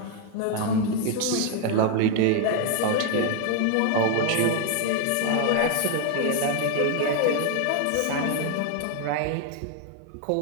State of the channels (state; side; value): different; both; correlation 0.01